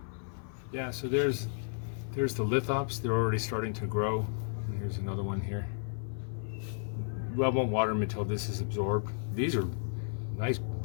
Yeah, so there's the lithops. They're already starting to grow. And here's another one here. Well, I won't water them until this is absorbed. These are nice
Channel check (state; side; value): silent; right; 56 dB below the other